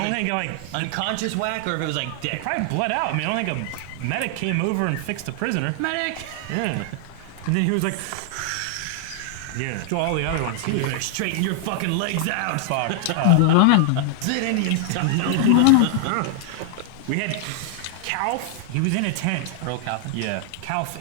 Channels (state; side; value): different; both; correlation 0.00